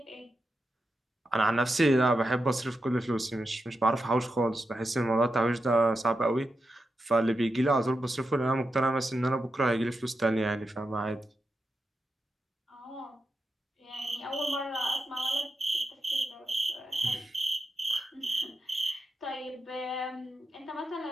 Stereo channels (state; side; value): normal; both; correlation 0.88